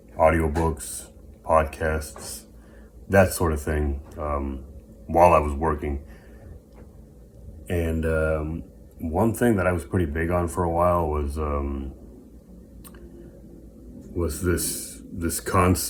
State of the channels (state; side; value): identical; both; correlation 1.00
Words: audiobooks, podcasts, that sort of thing, while I was working. And one thing that I was pretty big on for a while was this